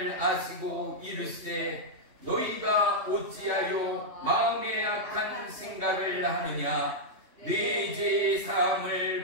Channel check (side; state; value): left; late; 3.1 ms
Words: 아시고 이르시되 너희가 어찌하여 마음에 악한 생각을 하느냐. 네 죄